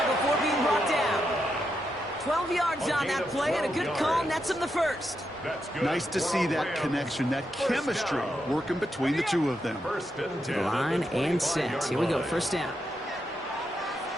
before being brought down. 12 yards on that play, and a good call nets him the first. Nice to see that connection, that chemistry working between the two of them. Line and set. Here we go, first down.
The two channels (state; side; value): normal; both; correlation 0.83